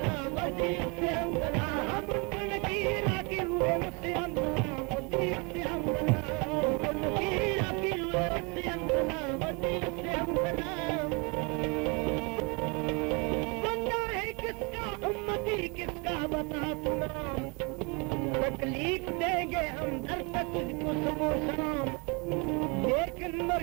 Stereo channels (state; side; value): quieter; left; 30.7 dB